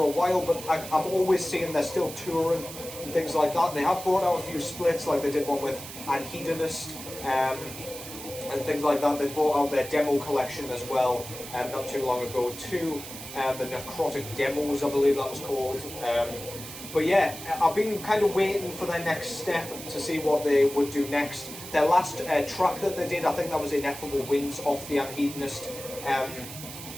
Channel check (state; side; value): noise; right; hiss, 12 dB below the sound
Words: a while, but I'm always seeing they're still touring and things like that. They have brought out a few splits, like they did one with Antichrist and things like that. They brought out their demo collection as well not too long ago too. The Necrotic Demos, I believe that was called. But yeah, I've been kind of waiting for their next step to see what they would do next. Their last track that they did, I think that was Ineffable Winds off the Antichrist